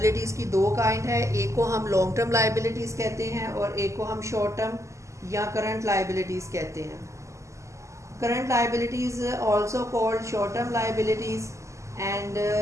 की दो kind है. एक को हम लॉन्ग टर्म लाइबिलिटीज़ कहते हैं और एक को हम शॉर्ट टर्म या करंट लाइबिलिटीज़ कहते हैं. Current liabilities also called short-term liabilities, and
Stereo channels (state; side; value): late; left; 0.14 ms